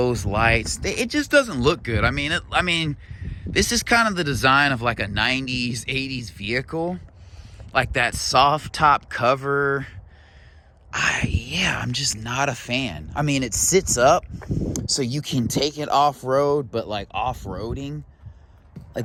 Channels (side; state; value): both; identical; correlation 1.00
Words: lights, it just doesn't look good. I mean, this is kind of the design of like a 90s, 80s vehicle. Like that soft top cover. I'm just not a fan. I mean, it sits up so you can take it off-road, but like off-roading,